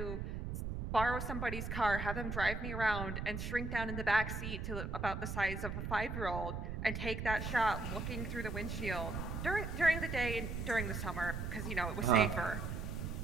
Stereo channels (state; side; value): noise; right; rumble, 4 dB below the sound